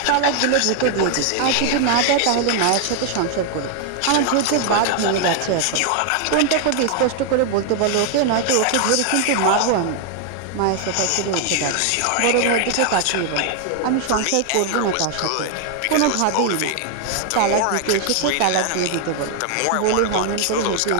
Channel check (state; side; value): different; both; correlation 0.00